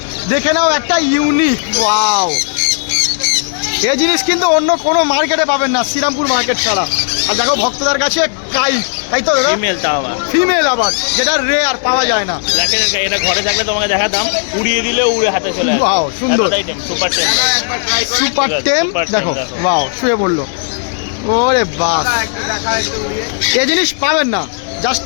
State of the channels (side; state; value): right; silent; digital silence